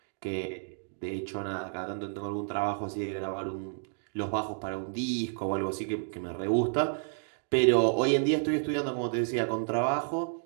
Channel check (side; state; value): left; silent; digital silence